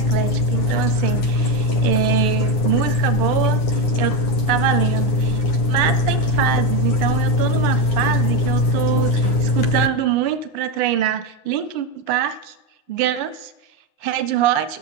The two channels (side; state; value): right; late; 9.6 ms